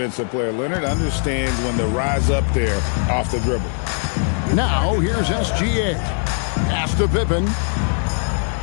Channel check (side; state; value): right; silent; 56 dB below the other